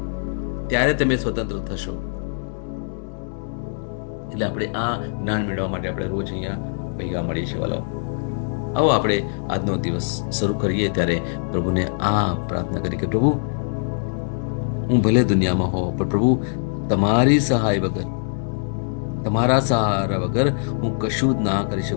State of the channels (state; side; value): silent; right; digital silence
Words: ત્યારે તમે સ્વતંત્ર થશો. એટલે આપણે આ જ્ઞાન મેળવવા માટે આપણે રોજ અહીંયા ભેગા મળીએ છીએ વાલાઓ. આવો આપણે આજનો દિવસ શરૂ કરીએ ત્યારે પ્રભુને આ પ્રાર્થના કરી કે પ્રભુ, હું ભલે દુનિયામાં હોઉં પણ પ્રભુ તમારી સહાય વગર, તમારા સહારા વગર હું કશું જ ના કરી